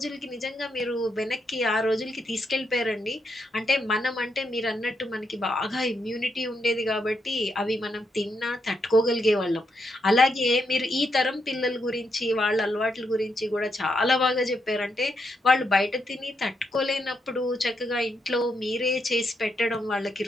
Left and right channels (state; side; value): normal; both; correlation 0.80